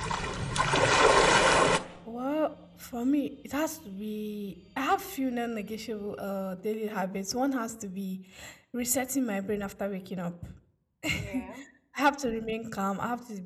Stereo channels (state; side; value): identical; both; correlation 1.00